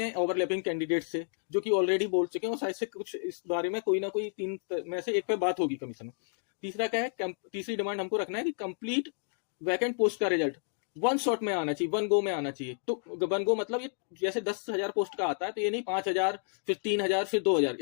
ओवरलैपिंग कैंडिडेट से जो कि ऑलरेडी बोल चुके हैं और शायद से कुछ इस बारे में कोई ना कोई 3 में से एक पे बात होगी कमीशन में। तीसरा क्या है, तीसरी डिमांड हमको रखना है कि कंप्लीट वैकेंट पोस्ट का रिजल्ट वन शॉट में आना चाहिए, वन गो में आना चाहिए। तो वन गो मतलब ये जैसे 10,000 पोस्ट का आता है तो ये नहीं 5,000 फिर 3,000 फिर 2,000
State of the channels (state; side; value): silent; right; digital silence